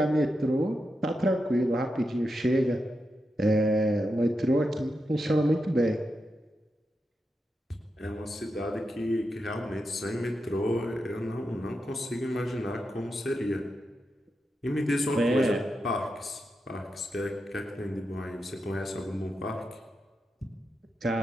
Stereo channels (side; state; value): both; normal; correlation 0.87